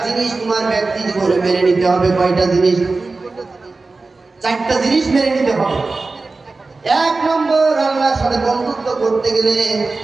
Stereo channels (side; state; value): left; quieter; 3.7 dB